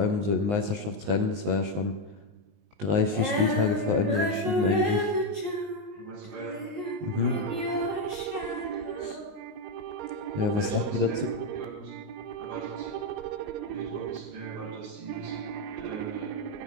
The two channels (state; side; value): late; left; 19 ms